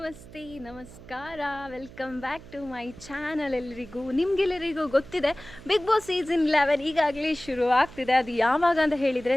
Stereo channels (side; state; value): right; noise; hum, 18 dB below the sound